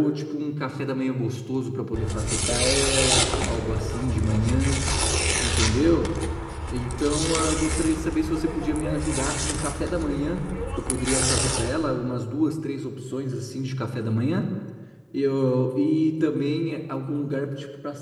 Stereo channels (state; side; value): identical; both; correlation 1.00